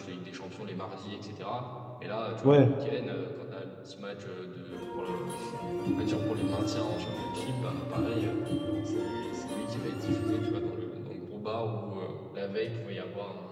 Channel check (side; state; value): both; identical; correlation 1.00